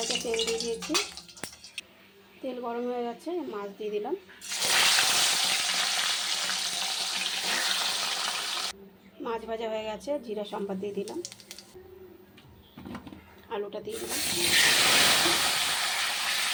তেল দিয়ে দিয়েছি, তেল গরম হয়ে গেছে, মাছ দিয়ে দিলাম। মাছ ভাজা হয়ে গেছে, জিরা সম্বাদ দিয়ে দিলাম, আলুটা দিয়ে দিলাম,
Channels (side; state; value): both; identical; correlation 1.00